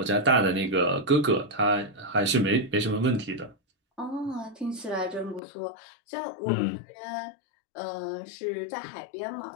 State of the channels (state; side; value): drops out; right; at 5.4 s